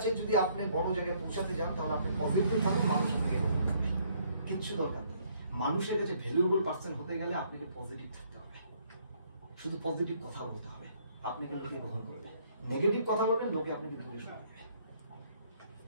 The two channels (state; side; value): inverted; both; correlation -0.66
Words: যদি আপনি বড় জায়গায় পৌঁছাতে যান তাহলে আপনি পজিটিভ থাকেন, মানুষ আপনাকে কিচ্ছু দরকার নেই। মানুষের কাছে ভ্যালুয়েবল পার্সন হতে গেলে আপনাকে পজিটিভ থাকতে হবে, শুধু পজিটিভ কথা বলতে হবে, আপনাকে লোকে গ্রহণ করবে। নেগেটিভ কথা বলবেন লোকে আপনাকে দূরে সরাবে।